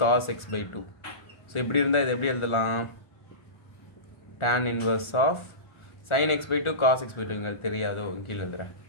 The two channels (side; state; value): right; late; 1.4 ms